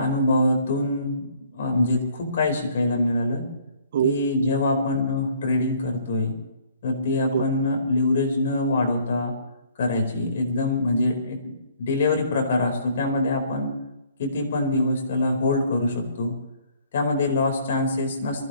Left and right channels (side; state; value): both; inverted; correlation -0.60